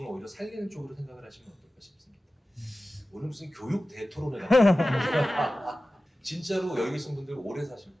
오히려 살리는 쪽으로 생각을 하시면 어떨까 싶습니다. 오늘 무슨 교육 대토론회가 진짜로 여기 계신 분들 오래 사실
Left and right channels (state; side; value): normal; both; correlation 0.95